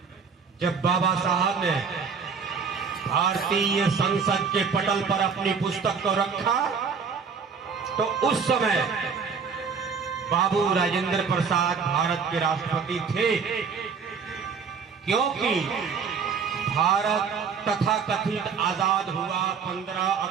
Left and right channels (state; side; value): quieter; left; 5.8 dB